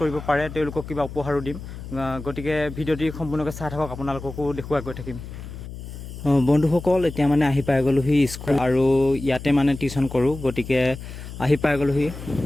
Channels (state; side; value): noise; left; hum, 11 dB below the sound